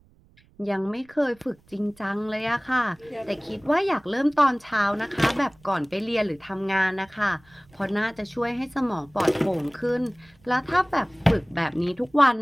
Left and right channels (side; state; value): right; noise; rumble, 30 dB below the sound